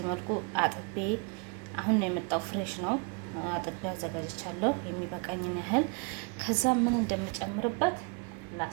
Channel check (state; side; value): quieter; left; 34.9 dB